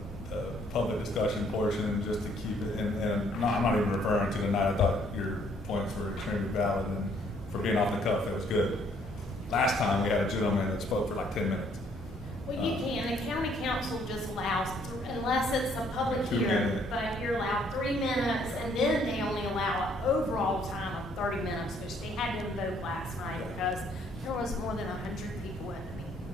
public discussion portion just to keep it, and I'm not even referring to tonight. I thought your points were extremely valid, and for being off the cuff, that was good. Last time we had a gentleman that spoke for like 10 minutes. Well, you can. The county council just allows, unless it's a public 2 hearing, minutes. but you're allowed 3 minutes, and then they only allow an overall time of 30 minutes, which they had to invoke last night because there was more than 100 people at the meeting.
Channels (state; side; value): normal; both; correlation 0.65